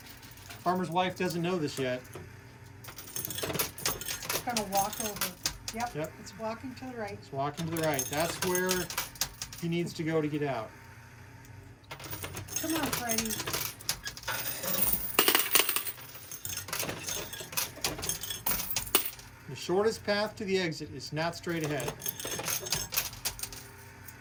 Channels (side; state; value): both; identical; correlation 1.00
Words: Farmer's wife doesn't know this yet. It's gonna walk over. Yep. It's walking to the right. It's walking to the right. That's where he needs to go to get out. Come on, Freddy. shortest path to the exit is not straight ahead.